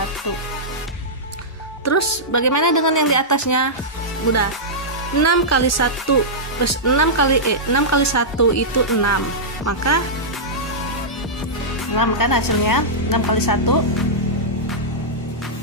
Terus bagaimana dengan yang di atasnya? Mudah. 6 kali 1 plus 6 kali 1 itu 6. Maka 6 kan hasilnya, 6 kali 1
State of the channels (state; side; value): normal; both; correlation -0.12